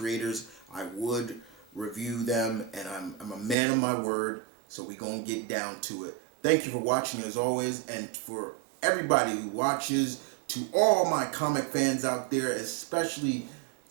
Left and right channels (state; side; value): drops out; left; at 3.6 s